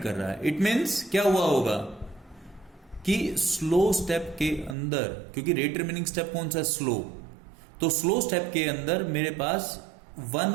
रहा है। इट मीन्स क्या हुआ होगा कि स्लो स्टेप के अंदर, क्योंकि रेट डिटरमिनिंग स्टेप कौन सा है? स्लो। तो स्लो स्टेप के अंदर मेरे पास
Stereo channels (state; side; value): drops out; left; at 4.8 s